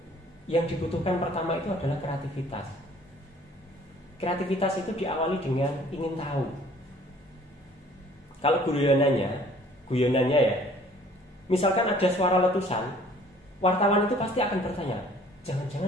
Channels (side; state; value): both; normal; correlation 0.55